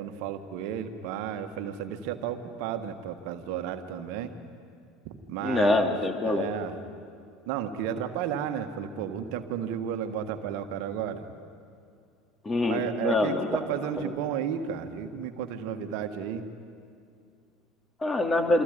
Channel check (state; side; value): normal; both; correlation 0.48